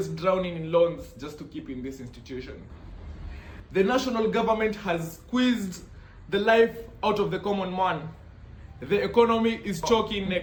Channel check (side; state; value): both; identical; correlation 1.00